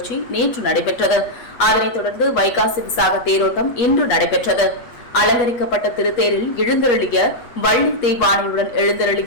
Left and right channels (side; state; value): right; late; 8.3 ms